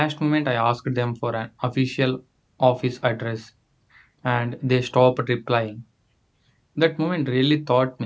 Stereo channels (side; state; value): both; identical; correlation 1.00